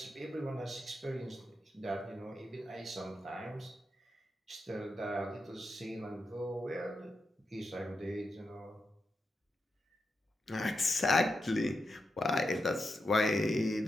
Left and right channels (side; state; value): both; normal; correlation 0.87